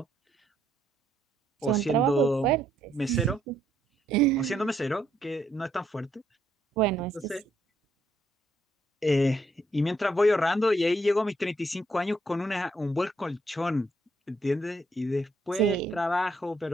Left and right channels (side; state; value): both; normal; correlation 0.73